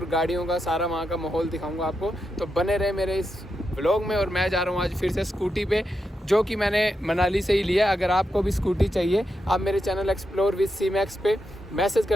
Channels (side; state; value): both; normal; correlation 0.86